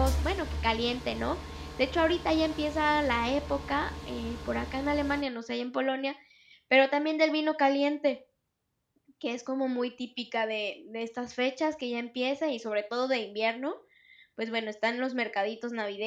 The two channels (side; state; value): both; identical; correlation 1.00